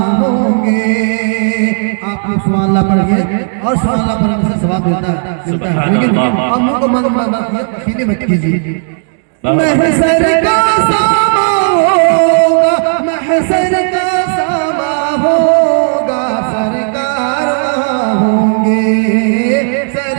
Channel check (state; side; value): silent; left; 65 dB below the other